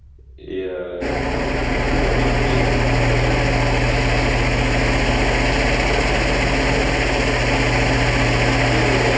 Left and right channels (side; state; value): both; identical; correlation 1.00